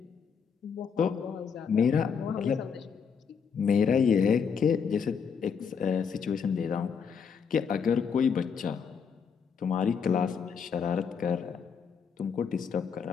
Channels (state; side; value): quieter; right; 6.4 dB